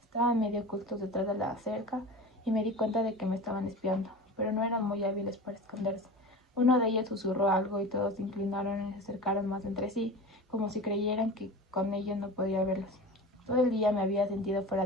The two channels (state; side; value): normal; both; correlation 0.33